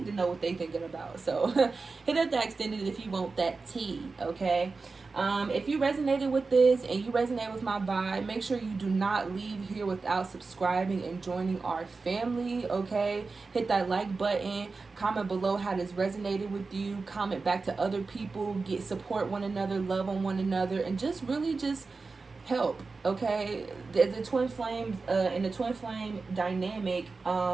to know what they're thinking about. So hit up that extended if you want that tea. Okay. If you resonated with this and you resonate with my vibe, make sure you do not leave here without subscribing and joining our family. Okay, hit that like button, comment below how this resonated with you, comment back to other people, get support one another, love on one another, and just really just help. Okay, the twin flames in the twin flame dynamic,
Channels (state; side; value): quieter; left; 4.1 dB